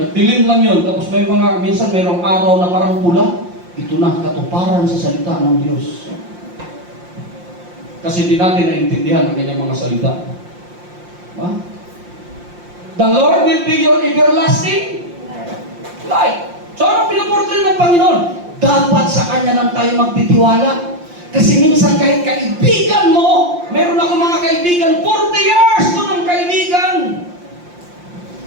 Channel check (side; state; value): left; late; 5.7 ms